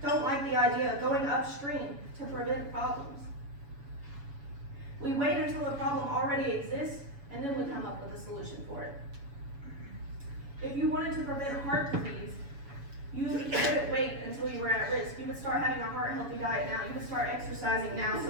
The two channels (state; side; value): late; left; 7.1 ms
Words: don't like the idea of going upstream to prevent problems. We wait until the problem already exists, and then we come up with a solution for it. If you wanted to prevent heart disease, you wouldn't wait until you were at risk. You would start having a heart-healthy diet now. You would start exercising now, so